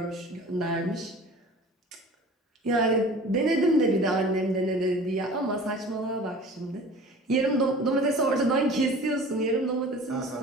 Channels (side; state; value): both; normal; correlation 0.42